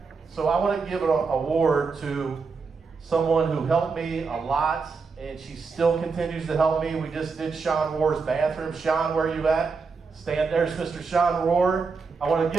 So I want to give an award to someone who helped me a lot, and she still continues to help me. We just did Sean Rohr's bathroom. Sean, where are you at? Stand there's Mr. Sean Rohr. I want to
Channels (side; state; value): left; quieter; 4.8 dB